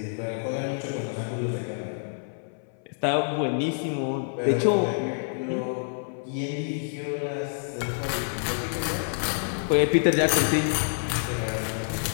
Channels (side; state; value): right; silent; 60 dB below the other